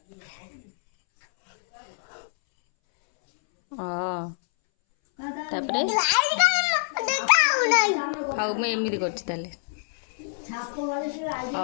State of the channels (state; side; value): silent; right; 61 dB below the other